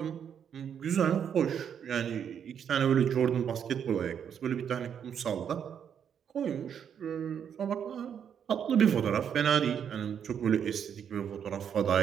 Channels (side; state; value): left; quieter; 8.2 dB